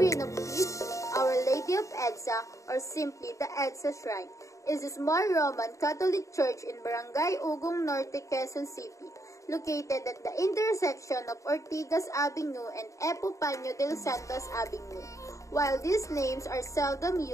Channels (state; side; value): late; right; 0.15 ms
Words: of Peace, Our Lady of EDSA, or simply the EDSA Shrine, is a small Roman Catholic church in Barangay Ugong Norte, Quezon City, located at the intersection of Ortigas Avenue and Epifanio de los Santos Avenue. While these names are seldom